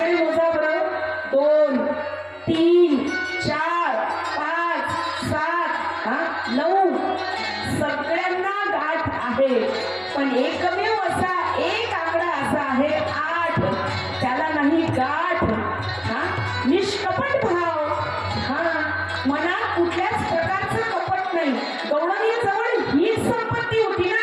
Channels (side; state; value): both; identical; correlation 1.00